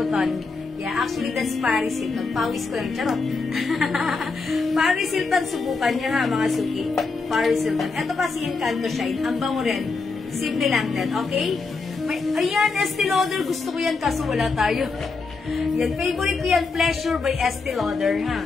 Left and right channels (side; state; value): right; quieter; 4.2 dB